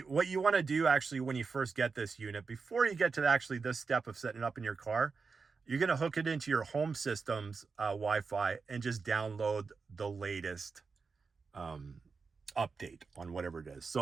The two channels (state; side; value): quieter; left; 4.8 dB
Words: What you want to do actually when you first get this unit, before you get to actually this step of setting it up in your car, you're going to hook it into your home system's Wi-Fi and just download the latest update on whatever it is.